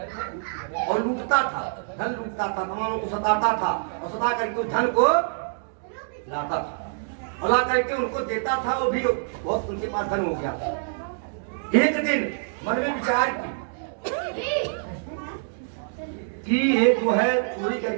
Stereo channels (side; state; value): left; silent; digital silence